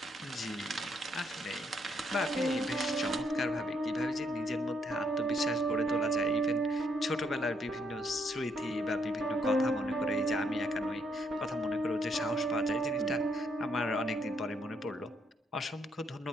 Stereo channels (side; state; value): both; normal; correlation 0.73